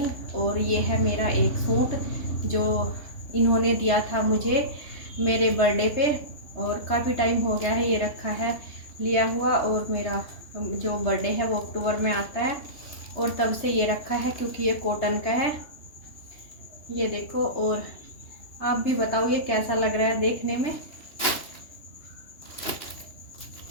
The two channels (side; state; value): right; late; 3.2 ms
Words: और ये है मेरा एक सूट जो इन्होंने दिया था मुझे मेरे बर्थडे पे, और काफ़ी टाइम हो गया है ये रखा है लिया हुआ। और मेरा जो बर्थडे है वो अक्टूबर में आता है और तब से ये रखा है क्योंकि ये कॉटन का है। ये देखो, और आप भी बताओ ये कैसा लग रहा है देखने में।